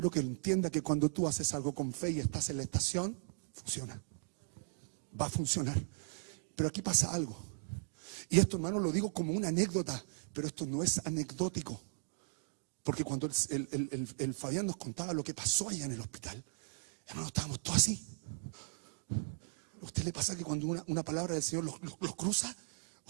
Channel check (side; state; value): left; silent; digital silence